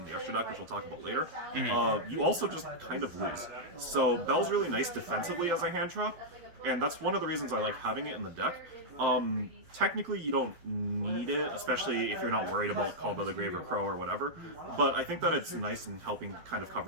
the extra deck, which we'll talk about later, you also just kind of lose. So Belle's really nice defensively as a hand trap, and that's one of the reasons I like having it in the deck. Technically, you don't need it, especially if you're not worried about Called by the Grave or Crow or whatever, but I think that it's nice in helping kind of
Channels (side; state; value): left; late; 12 ms